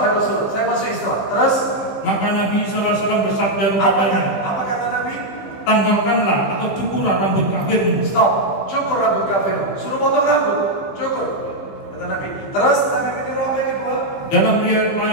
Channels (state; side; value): late; right; 16 ms